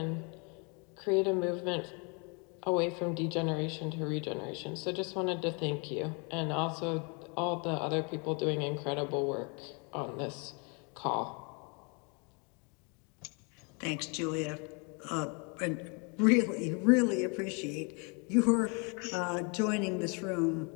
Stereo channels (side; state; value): right; quieter; 33.5 dB